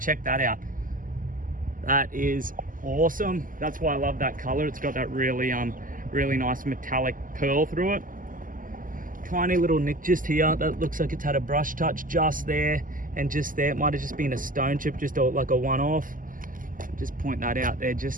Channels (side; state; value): left; late; 0.39 ms